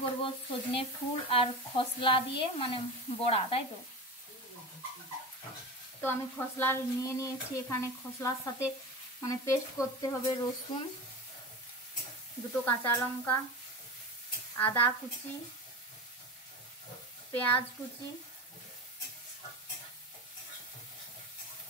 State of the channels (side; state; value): both; normal; correlation 0.27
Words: করব সজনে ফুল আর খসলা দিয়ে মানে বড়া, তাই তো। তো আমি খসলা নিয়েছি এখানে। খসলার সাথে মানে পেস্ট করতে হবে রসুন, দুটো কাঁচা লঙ্কা, আদা কুচি, পেঁয়াজ কুচি,